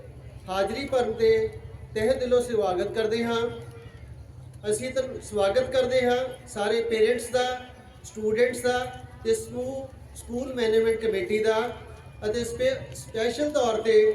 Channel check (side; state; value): both; identical; correlation 1.00